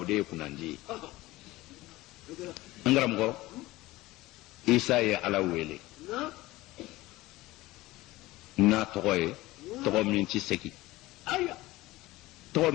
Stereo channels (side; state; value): right; quieter; 18.7 dB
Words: de kunanji ngaram go isa ya ala wele na toye to minti seki to